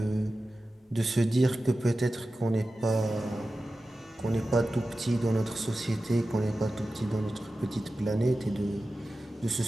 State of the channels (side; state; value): both; normal; correlation 0.94